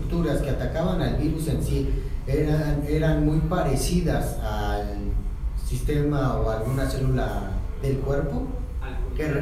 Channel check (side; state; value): both; identical; correlation 1.00